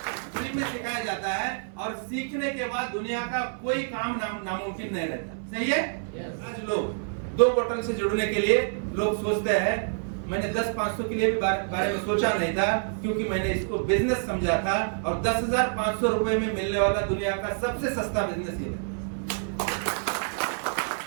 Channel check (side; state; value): left; silent; 56 dB below the other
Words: फ्री में सिखाया जाता है, और सीखने के बाद दुनिया का कोई काम नामुमकिन नहीं रहता। सही है? आज लोग 2 बोतल से जुड़ने के लिए लोग सोचते हैं मैंने 10-500 के लिए भी बारे में सोचा नहीं था, क्योंकि मैंने इसको बिजनेस समझा था और 10,500 रुपए में मिलने वाला दुनिया का सबसे सस्ता बिजनेस ये है।